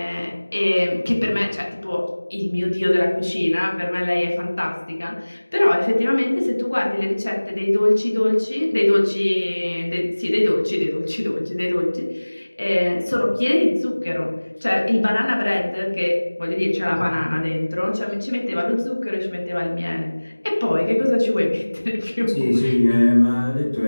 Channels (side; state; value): both; inverted; correlation -1.00